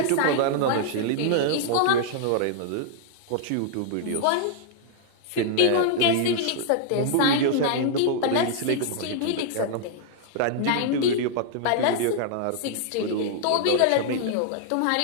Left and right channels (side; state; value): both; different; correlation -0.01